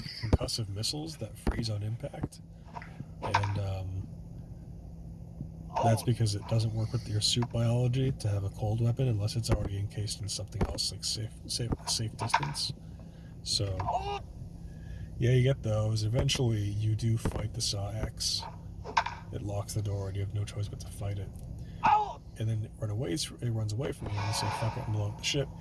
concussive missiles that freeze on impact. And that's because it doesn't work with your suit biology to have a cold weapon unless it's already encased in something else, like safe distance. So, yeah, you get those. Eventually, you do fight the SAW-X. It locks the door, and you have no choice but to fight it. And then it runs away from you, and you say, fuck it, and blow up the ship.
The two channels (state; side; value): identical; both; correlation 1.00